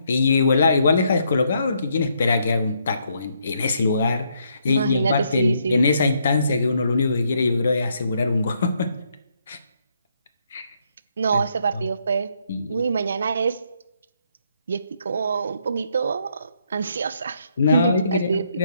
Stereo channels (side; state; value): both; inverted; correlation -0.74